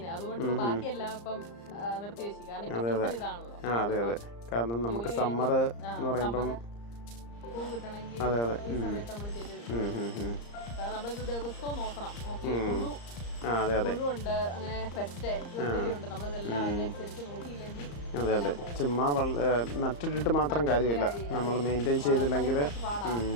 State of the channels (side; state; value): right; late; 34 ms